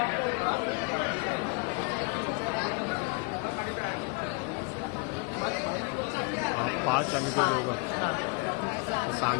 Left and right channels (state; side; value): quieter; right; 32.2 dB